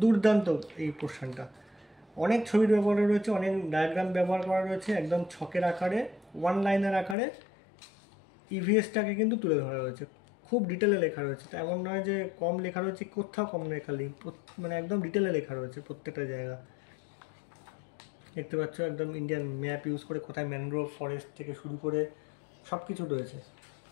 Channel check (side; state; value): right; drops out; at 7.2 s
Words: দুর্দান্ত এই পোর্শনটা। অনেক ছবির ব্যবহার রয়েছে, অনেক ডায়াগ্রাম ব্যবহার করা রয়েছে, একদম ছকের আকারে, ওয়ান লাইনের আকারে ইভিএসটাকে কিন্তু তুলে ধরা রয়েছে। খুব ডিটেলে লেখা রয়েছে, তো এমন নয় যে কম লেখা রয়েছে, কোথাও কম লেখা নেই, মানে একদম ডিটেলে লেখা রয়েছে প্রত্যেকটা জায়গা। দেখতে পাচ্ছ একদম ইন্ডিয়ান ম্যাপ ইউজ করে কোথায় ম্যানগ্রোভ ফরেস্ট থেকে শুরু করে সব কিছু রয়েছে।